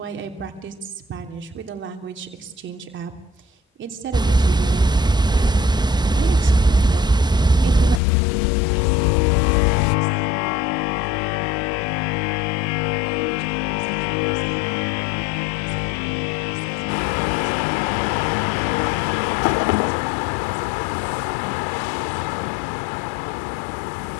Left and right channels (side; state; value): right; drops out; at 8.0 s